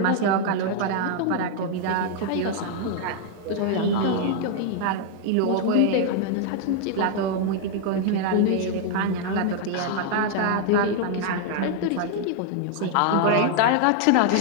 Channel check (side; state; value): both; different; correlation 0.00